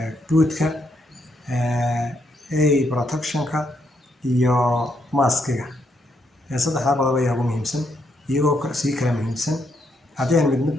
bootka protectionka iyo maskiga saddexda qodob ayaa ugu muhiimsan iyagoo si kala muhiimsan haddii aan mid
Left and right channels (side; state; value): both; normal; correlation 0.77